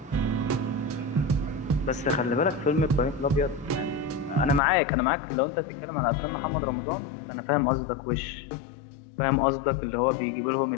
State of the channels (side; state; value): right; drops out; at 4.6 s